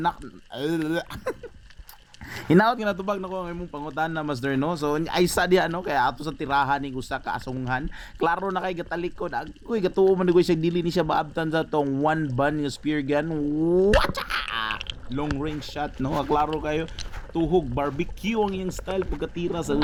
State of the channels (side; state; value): both; identical; correlation 1.00